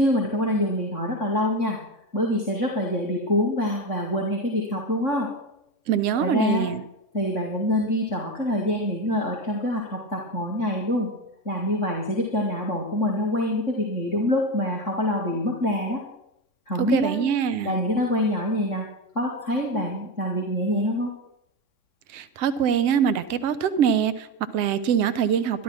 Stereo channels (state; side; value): late; right; 3.6 ms